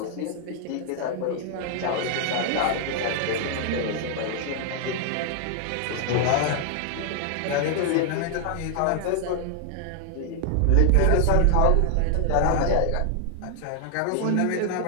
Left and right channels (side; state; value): both; different; correlation 0.00